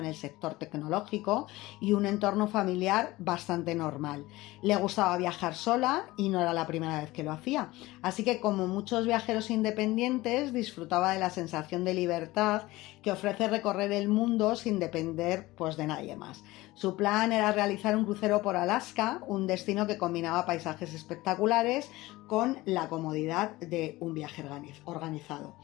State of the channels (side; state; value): right; quieter; 19.2 dB